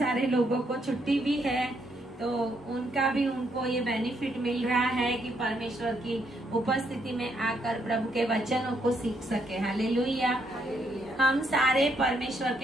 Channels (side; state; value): both; normal; correlation 0.74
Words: लोगों को छुट्टी भी है, तो उनको ये बेनिफिट मिल रहा है कि परमेश्वर की उपस्थिति में आकर प्रभु के वचनों को सीख सके। हालेलुया। हम सारे परमेश्वर